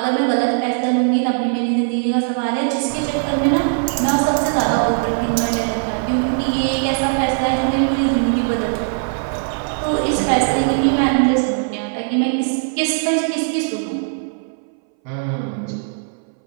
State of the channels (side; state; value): left; silent; 62 dB below the other